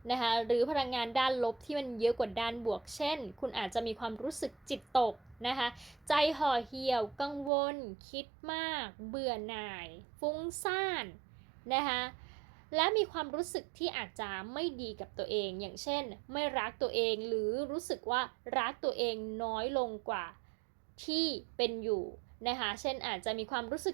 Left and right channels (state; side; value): drops out; left; at 7.5 s